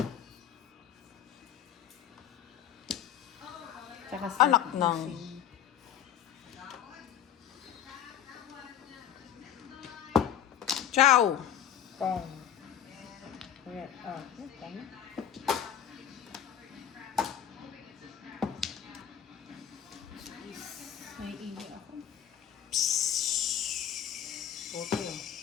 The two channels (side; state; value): right; quieter; 9.9 dB